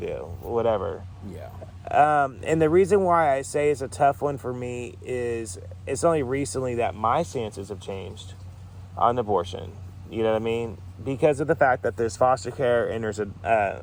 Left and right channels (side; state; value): both; identical; correlation 1.00